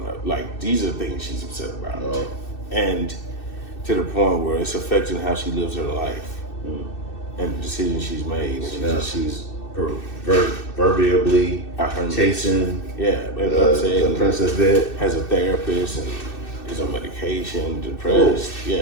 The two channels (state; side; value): late; right; 2.6 ms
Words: up. Like, these are things she's upset about. Oh. And to the point where it's affecting how she lives her life and the decisions she's made. And she's proverbially chasing the princess bed. Has a therapist and is on medication, depressed. Oh.